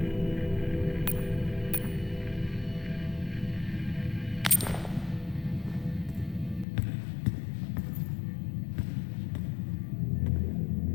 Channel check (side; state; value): right; drops out; at 6.7 s